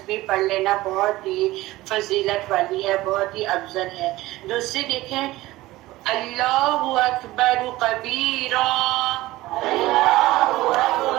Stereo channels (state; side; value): quieter; left; 17.9 dB